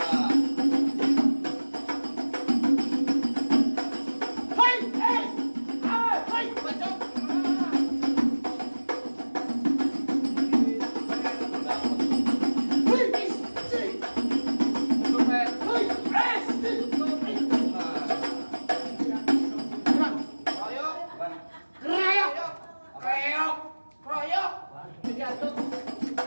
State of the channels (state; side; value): inverted; both; correlation -1.00